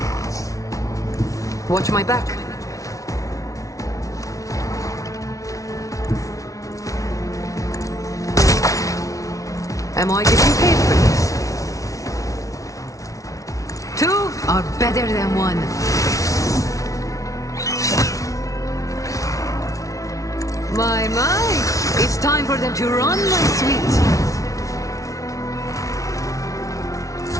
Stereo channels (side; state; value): right; late; 0.16 ms